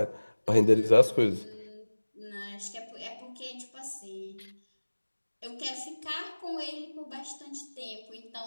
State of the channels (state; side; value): inverted; both; correlation -1.00